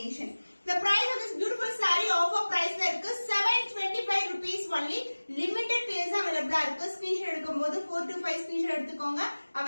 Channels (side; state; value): both; inverted; correlation -1.00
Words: The price of this beautiful saree offer price ல இருக்கு 725 rupees only. limited pairs available இருக்கு. ஸ்கிரீன்ஷாட் எடுக்கும்போது 4 to 5 ஸ்கிரீன்ஷாட் எடுத்துக்கோங்க.